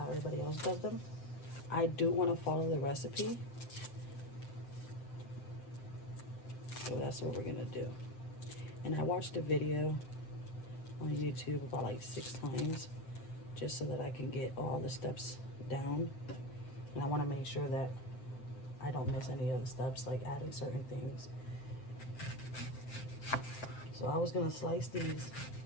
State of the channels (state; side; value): late; right; 7.7 ms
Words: everybody else does them. I do want to follow the recipe. So that's what we're gonna do. And I watched a video on YouTube about like 6 times just so that I can get all the steps down. And I want to make sure that I don't miss any of the steps, like adding certain things. So I was gonna slice these